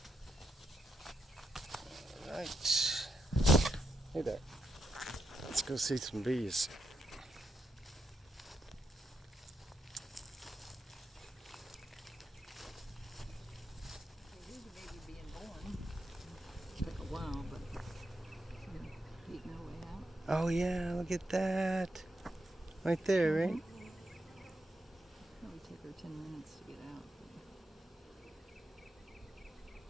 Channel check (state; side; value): normal; both; correlation 0.83